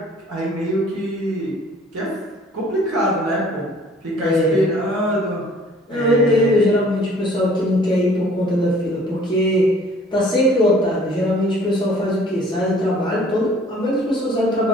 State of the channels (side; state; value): both; normal; correlation 0.54